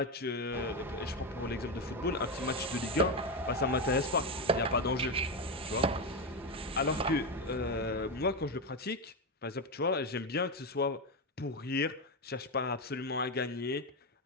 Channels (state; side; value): normal; both; correlation 0.11